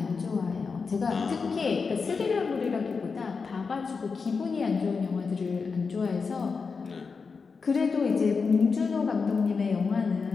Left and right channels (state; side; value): quieter; right; 5.0 dB